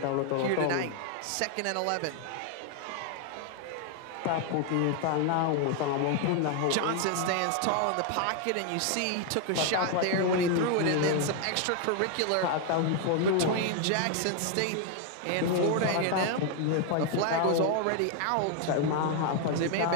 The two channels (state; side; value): different; both; correlation 0.00